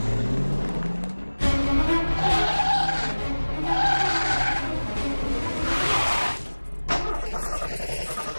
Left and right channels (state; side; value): inverted; both; correlation -1.00